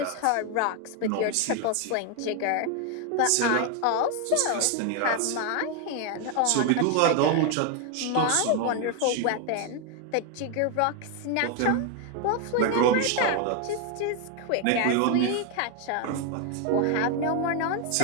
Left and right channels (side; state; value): both; different; correlation 0.01